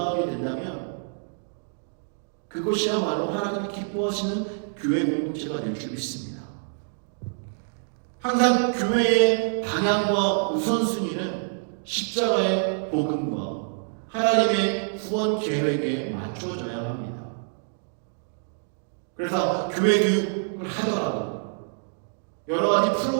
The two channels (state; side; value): silent; left; digital silence